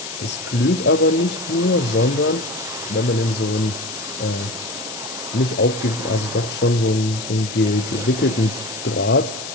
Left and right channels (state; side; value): noise; left; hiss, 9 dB below the sound